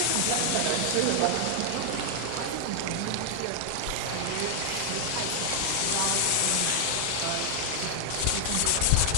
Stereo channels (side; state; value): both; different; correlation 0.00